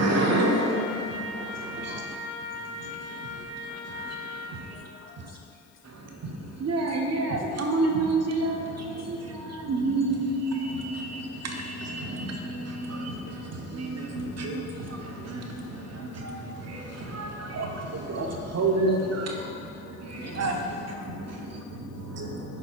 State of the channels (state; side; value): noise; left; hiss, 29 dB below the sound